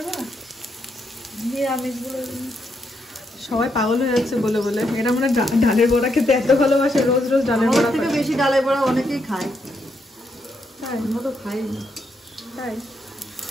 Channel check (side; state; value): both; normal; correlation 0.79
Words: বড়া, নিরামিষগুলো সবাই পাগল হয়ে যাচ্ছে বলে বলে। এরা মানে ডালের বড়া খেতে এত ভালোবাসে, রোজ রোজ ডালের বড়া। থেকে বেশি ডালের বড়া অনেকেই খায়। তাই? আমরা তো খাই না। তাই?